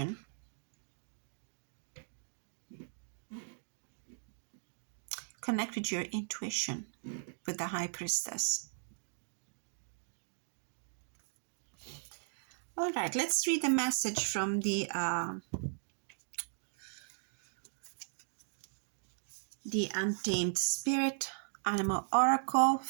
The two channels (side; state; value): left; silent; digital silence